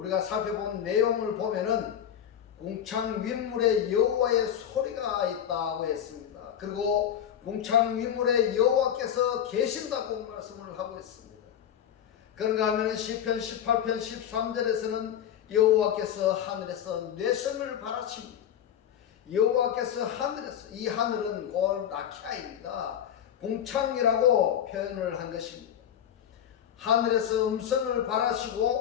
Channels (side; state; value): right; quieter; 9.6 dB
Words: 살펴본 내용을 보면은 궁창 윗물에 여호와의 소리가 있다고 했습니다. 그리고 궁창 윗물에 여호와께서 계신다고 말씀을 하고 있습니다. 그런가 하면 시편 18편 13절에서는 여호와께서 하늘에서 뇌성을 바라십니다. 여호와께서 하늘에서, 이 하늘은 곧 라키아입니다. 궁창이라고 표현을 한 것입니다. 하늘에서 음성을